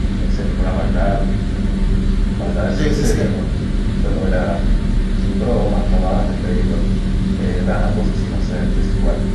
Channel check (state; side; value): identical; both; correlation 1.00